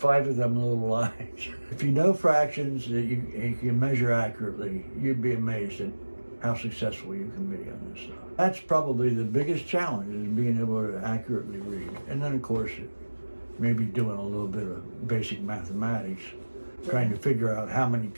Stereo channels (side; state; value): both; inverted; correlation -1.00